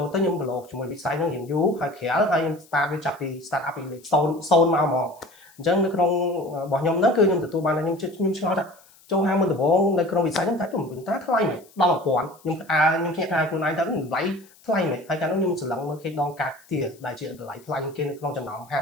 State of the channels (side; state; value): left; noise; hiss, 27 dB below the sound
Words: លទៅខ្ញុំប្រឡូកជាមួយវិស័យហ្នឹងរៀងយូរហើយក្រៅហើយខ្ញុំ start វាចាប់ពី start up ពីលេខ0មកហ្មងអញ្ចឹងនៅក្នុងរបស់ខ្ញុំហ្នឹងគឺខ្ញុំទទួលបានថាខ្ញុំឆ្ងល់ថាចូលហាងមុនដំបូងនៅក្នុងវិស័យហ្នឹងតែទៅវិញតាថ្លៃមែនដល់1000ខ្ញុំភ្ញាក់ផ្អើលខ្លួនឯងទៅតម្លៃថ្លៃមែនហើយកាលនោះខ្ញុំស្រឡឹងមើលគេដងកាត់ទាដែលជាតម្លៃថ្លៃគេនៅក្នុងចំណោមហា